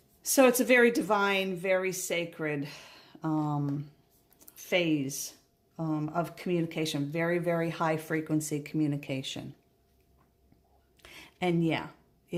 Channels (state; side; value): identical; both; correlation 1.00